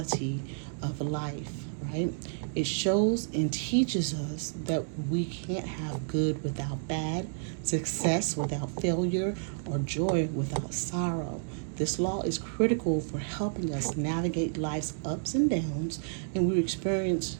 of life, right? It shows and teaches us that we can't have good without bad, success without failure, or joy without sorrow. This law is critical for helping us navigate life's ups and downs, and we experience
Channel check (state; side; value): silent; left; digital silence